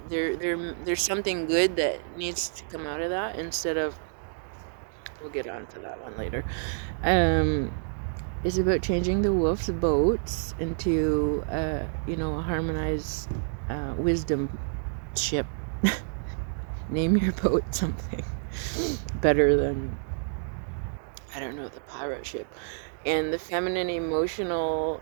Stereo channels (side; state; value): left; silent; digital silence